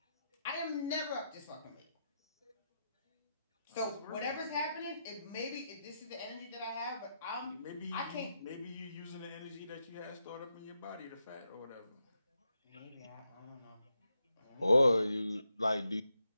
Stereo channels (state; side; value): inverted; both; correlation -0.84